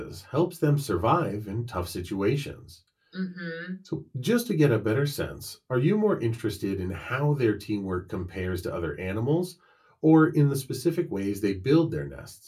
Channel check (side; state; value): both; identical; correlation 1.00